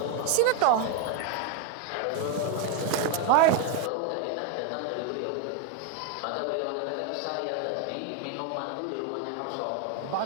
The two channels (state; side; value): different; both; correlation 0.01